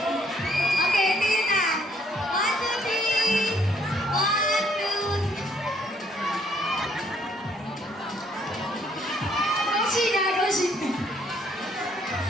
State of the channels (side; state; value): both; normal; correlation 0.66